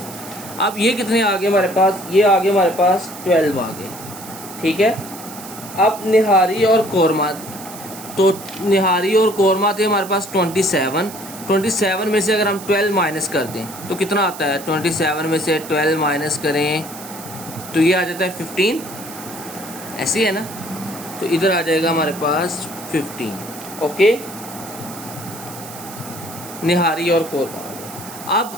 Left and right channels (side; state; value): right; noise; hiss, 14 dB below the sound